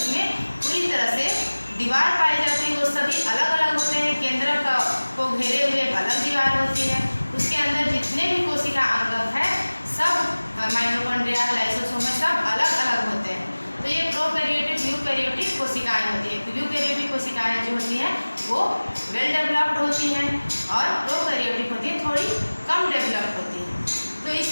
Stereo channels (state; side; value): inverted; both; correlation -1.00